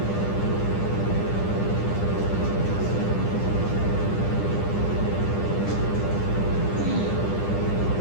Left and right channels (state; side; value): late; right; 10 ms